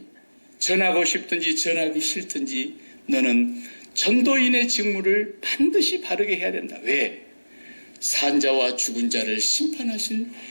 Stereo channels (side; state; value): both; inverted; correlation -1.00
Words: 전하고 싶든지 전하기 싫든지 너는 전도인의 직무를 반드시 바르게 해야 된다. 왜? 산자와 죽은 자를 심판하실